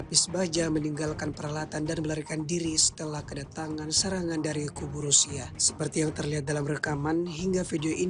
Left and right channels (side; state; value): both; identical; correlation 1.00